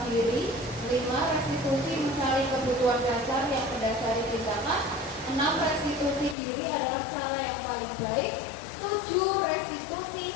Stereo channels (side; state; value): right; drops out; at 6.4 s